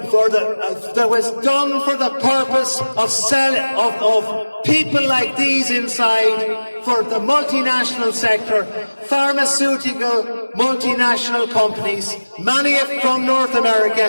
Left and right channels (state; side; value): inverted; both; correlation -1.00